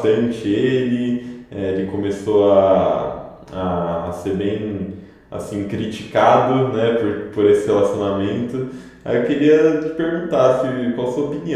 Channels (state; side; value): identical; both; correlation 1.00